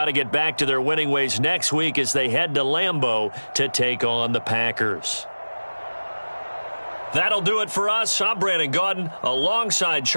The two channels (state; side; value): inverted; both; correlation -1.00